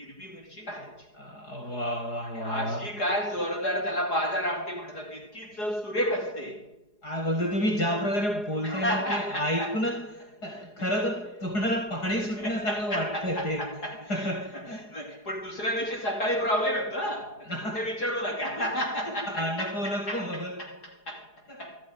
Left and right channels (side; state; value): right; late; 4.8 ms